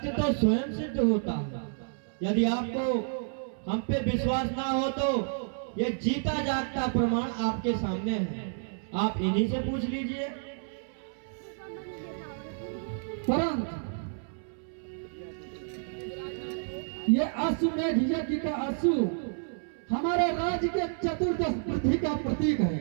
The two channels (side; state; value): left; silent; 58 dB below the other